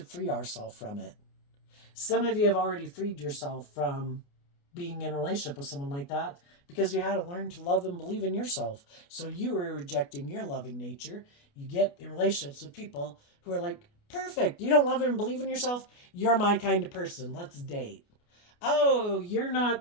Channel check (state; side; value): late; right; 29 ms